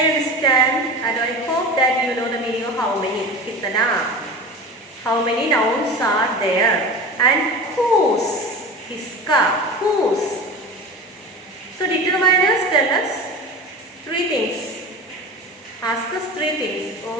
understand and I hope that you know the meaning of how many. Kitana. How many nouns are there? And whose? Kiska. Whose? So determiners tell us 3 things. Ask us 3 things,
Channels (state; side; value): normal; both; correlation 0.31